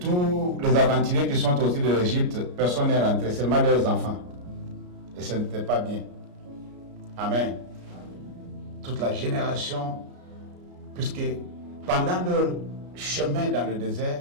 les aventuriers qui sont sortis de l'Égypte, personne n'est rentré, seulement leurs enfants. Et ce n'était pas bien. Amen. Toute la génération, puisque pendant leur chemin dans le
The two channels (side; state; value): left; late; 33 ms